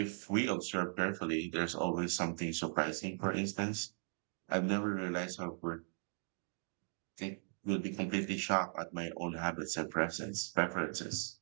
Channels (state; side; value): silent; left; 52 dB below the other